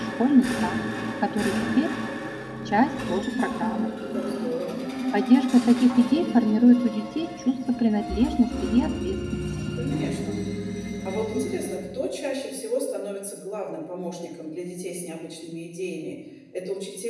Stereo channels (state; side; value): identical; both; correlation 1.00